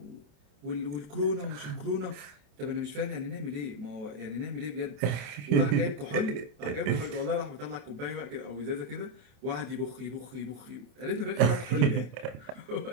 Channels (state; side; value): late; left; 27 ms